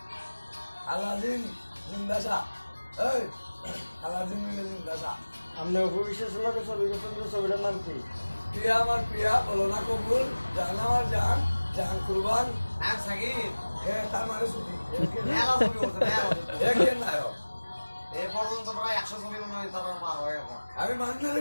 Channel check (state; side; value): inverted; both; correlation -1.00